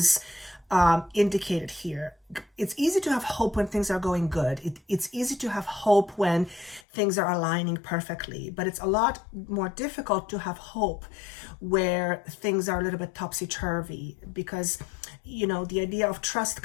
indicated here. It's easy to have hope when things are going good. It's easy to have hope when things are aligning perfectly, but it's a lot more difficult to have hope where things are a little bit topsy-turvy, because the idea of trust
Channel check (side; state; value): right; drops out; at 6.8 s